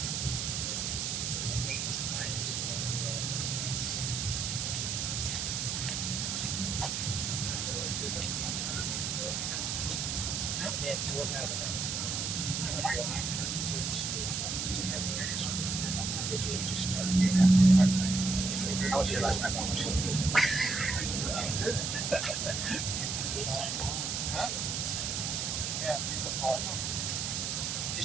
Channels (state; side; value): noise; right; hiss, 1 dB below the sound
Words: 8 to 9. And we'll have I was here last night.